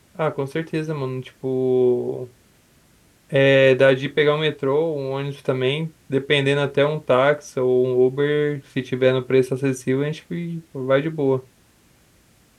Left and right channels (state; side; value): identical; both; correlation 1.00